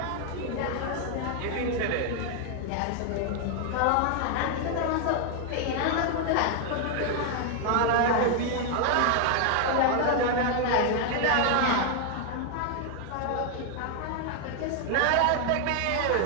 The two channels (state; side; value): different; both; correlation 0.00